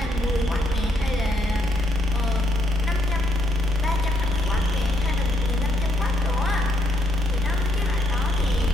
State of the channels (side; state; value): both; normal; correlation 0.74